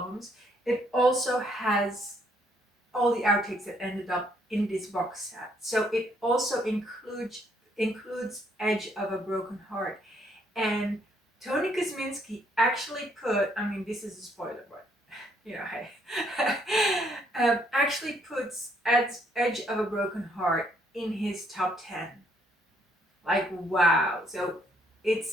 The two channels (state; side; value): normal; both; correlation 0.69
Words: it also has all the outtakes that ended up in this box set. So it also includes includes Edge of a Broken Heart. And Tony Kosminski actually put, I mean, this is a spoiler, but you know, hey, actually puts Edge of a Broken Heart in his top 10. Like, wow. So